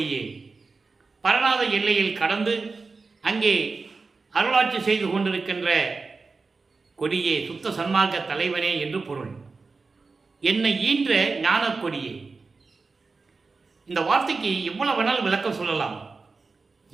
பரநாத எல்லையில் கடந்து அங்கே அருளாட்சி செய்து கொண்டிருக்கின்ற கொடியே, சுத்த சன்மார்க்க தலைவனே என்று பொருள். என்னை ஈன்ற ஞானக் கொடியே. இந்த வார்த்தைக்கு எவ்வளவு வேணாலும் விளக்கம் சொல்லலாம்.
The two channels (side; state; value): left; quieter; 4.2 dB